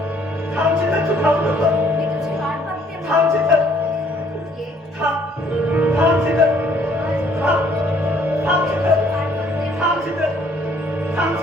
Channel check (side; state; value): both; normal; correlation 0.63